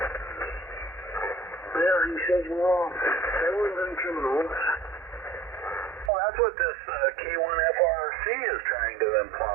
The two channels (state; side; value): drops out; left; at 6.1 s